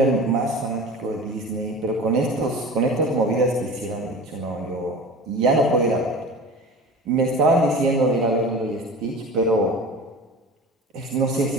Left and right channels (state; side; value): normal; both; correlation 0.36